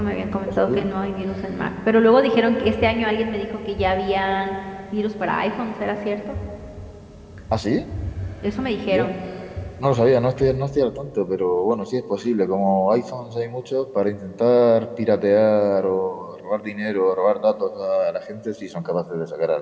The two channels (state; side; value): identical; both; correlation 1.00